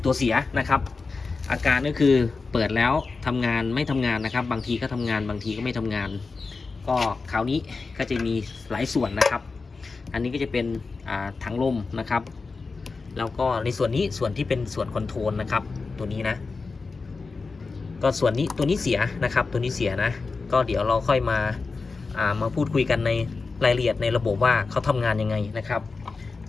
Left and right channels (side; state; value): right; quieter; 4.2 dB